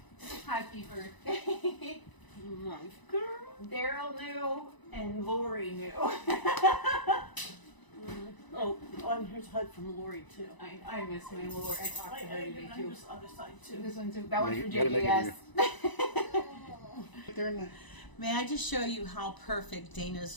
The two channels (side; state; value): right; late; 1.0 ms